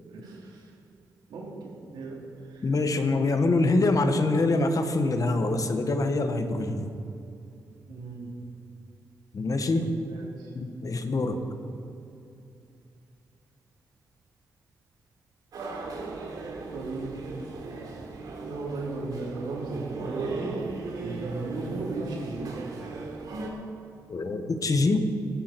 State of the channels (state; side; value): normal; both; correlation 0.79